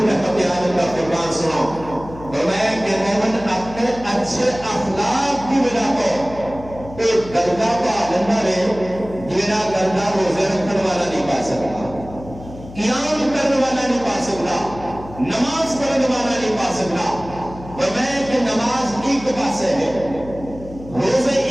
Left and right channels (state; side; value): noise; left; hum, 15 dB below the sound